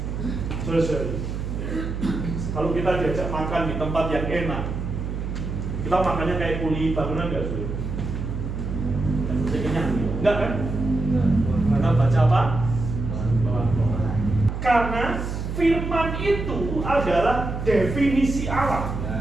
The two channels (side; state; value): right; noise; hum, 5 dB below the sound